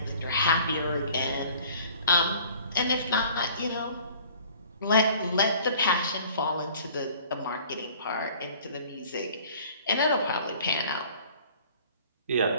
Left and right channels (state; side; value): inverted; both; correlation -0.51